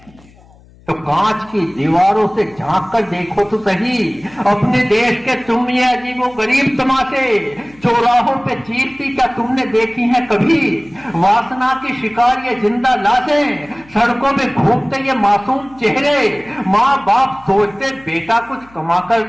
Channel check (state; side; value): noise; left; hum, 26 dB below the sound